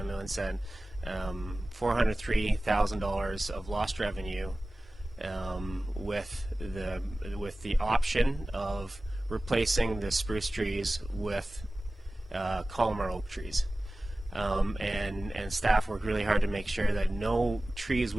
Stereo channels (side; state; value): both; normal; correlation 0.97